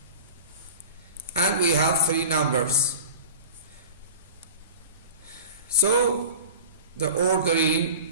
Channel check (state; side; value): inverted; both; correlation -0.36